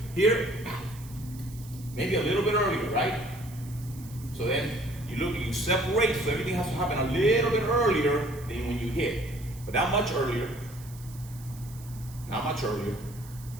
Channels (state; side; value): noise; right; hiss, 20 dB below the sound